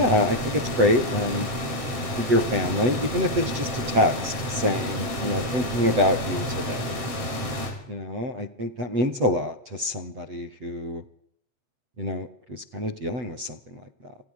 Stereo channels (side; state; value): left; late; 8.1 ms